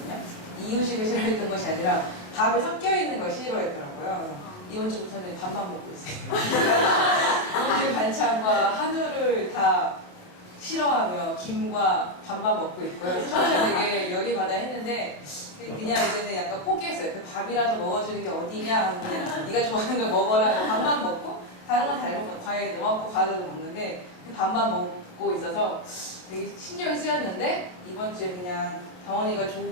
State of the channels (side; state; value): right; late; 28 ms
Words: 이유식을 싫어했던 것이 아니라 밥에 섞여 있는 걸 싫어했더라고요. 이번 주부터는 밥만 먹고 있어요. 오늘 반찬과 한우를 다 싫어하며 김과 밥만 먹고 있고요. 처음에 되게 열이 받아 했는데 그냥 이제는 약간 포기했어요. 그 밥이라도 먹어주는 게 어디냐 하고 그냥 네가 좋아하는 걸 먹어라. 밥만 먹고 다른 건 잘 먹고 과일도 먹고 과자도 먹는데 밥만 먹고 있어서 되게 신경이 쓰였는데 이번 주에 그냥 다원이가